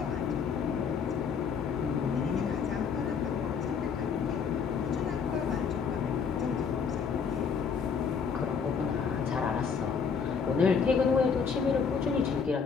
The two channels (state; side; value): quieter; right; 6.1 dB